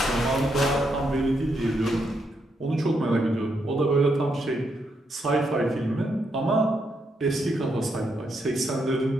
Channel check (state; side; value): normal; both; correlation 0.79